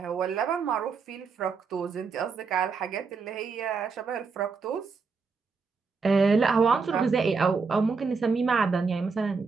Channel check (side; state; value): left; quieter; 4.9 dB